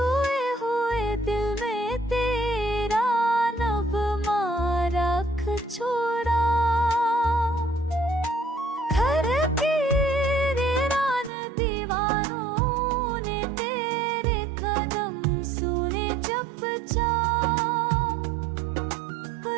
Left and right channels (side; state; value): left; drops out; at 11.3 s